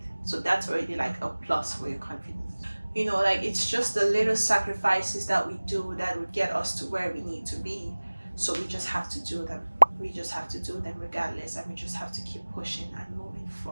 So that's already like a plus for your confidence. You know, like, it's just the little sacrifices that we do that would get us to where we need to be. So we just have to do them. We just have to do them regardless, and we just have to keep pushing and moving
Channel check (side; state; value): both; inverted; correlation -1.00